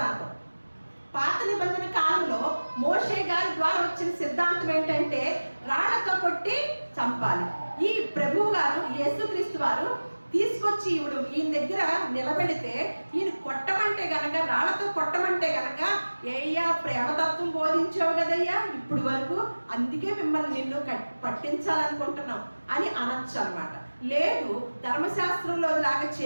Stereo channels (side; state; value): both; inverted; correlation -1.00